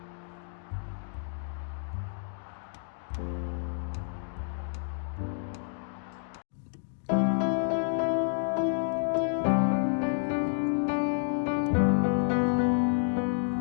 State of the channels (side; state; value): right; silent; 58 dB below the other